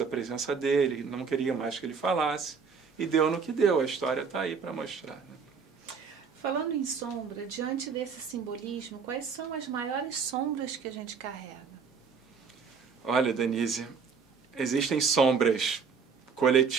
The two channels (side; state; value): left; quieter; 5.8 dB